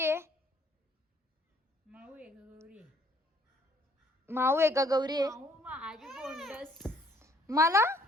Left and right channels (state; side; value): normal; both; correlation 0.63